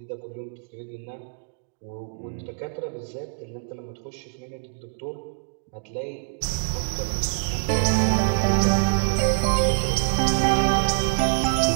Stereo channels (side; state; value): left; silent; digital silence